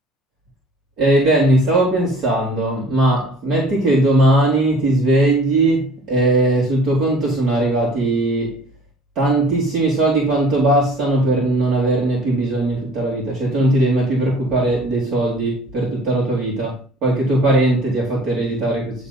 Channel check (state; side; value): normal; both; correlation 0.50